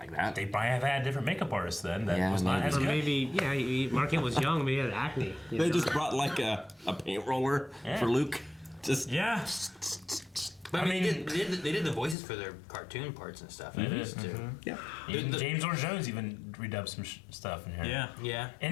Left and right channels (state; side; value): drops out; right; at 12.2 s